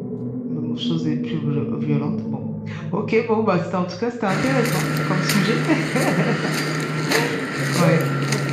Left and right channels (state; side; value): identical; both; correlation 1.00